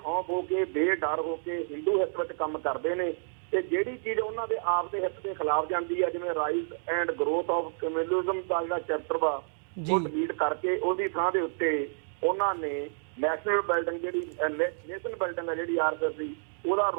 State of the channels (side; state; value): left; silent; digital silence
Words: ਹੋ ਕੇ, ਬੇਡਰ ਹੋ ਕੇ ਹਿੰਦੂ ਹਿੱਤ ਵਿੱਚ ਕੰਮ ਕਰਦੇ ਨੇ ਤੇ ਜਿਹੜੀ ਚੀਜ਼ ਉਹਨਾਂ ਦੇ ਆਪ ਦੇ ਹਿੱਤ ਦੇ ਖਿਲਾਫ ਜਾਂਦੀ ਹੈ, ਜਿਵੇਂ rise and growth of communism ਦਾ ਜਿਹੜਾ ਚੈਪਟਰ ਵਾ ਉਹ ਡਿਲੀਟ ਕਰਕੇ ਉਹਦੀ ਥਾਂ ਦੇ ਉੱਤੇ ਉਹਨਾਂ ਨੇ ਨੈਸ਼ਨਲ ਬਿਲਡਿੰਗ ਜਿਹੜੀ ਨੇਸ਼ਨ ਬਿਲਡਿੰਗ ਹੈ ਜਿਹੜੀ ਆਰਐਸਐਸ ਦੀ ਉਹਦਾ